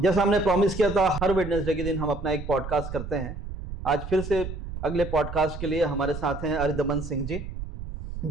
हमने प्रॉमिस किया था, हर वेडनेसडे के दिन हम अपना एक पॉडकास्ट करते हैं। आज फिर से अगले पॉडकास्ट के लिए हमारे साथ हैं अरिदमन सिंह जी,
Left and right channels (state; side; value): noise; right; rumble, 8 dB below the sound